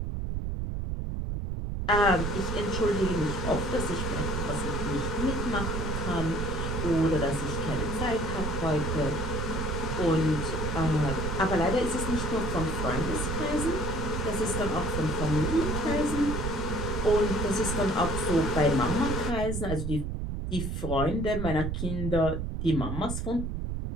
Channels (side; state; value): right; noise; rumble, 2 dB below the sound